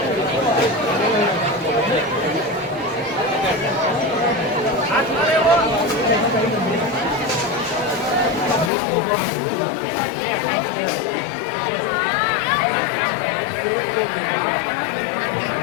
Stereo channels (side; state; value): right; drops out; at 8.7 s